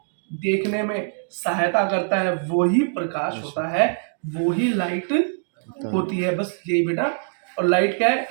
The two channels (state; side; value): silent; left; digital silence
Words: देखने में सहायता करता है, वो ही प्रकाश होता है, वो ही लाइट होती है। बस यही बेटा। और लाइट क्या है,